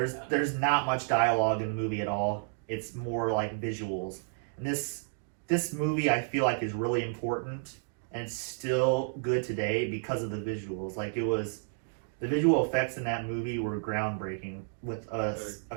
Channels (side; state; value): left; silent; digital silence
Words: not much dialogue in the movie at all. It's more like visuals. And this movie I feel like is really important, and it's still good today because of the visuals. Like the visual effects in that movie were groundbreaking with a